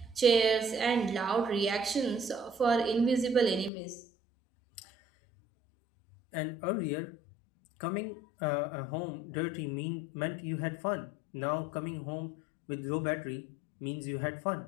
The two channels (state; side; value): drops out; right; at 3.7 s